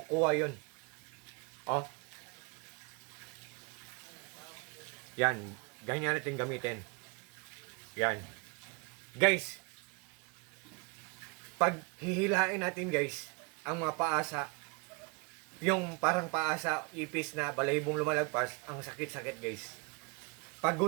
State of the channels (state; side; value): quieter; left; 31.1 dB